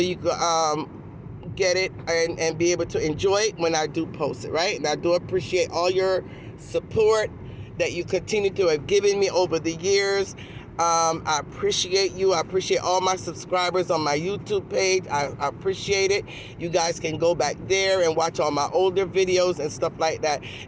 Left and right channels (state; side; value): identical; both; correlation 1.00